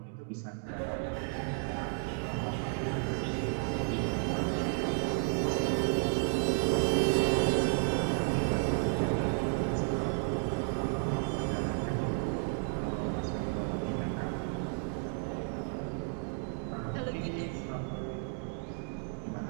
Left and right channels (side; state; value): left; silent; 56 dB below the other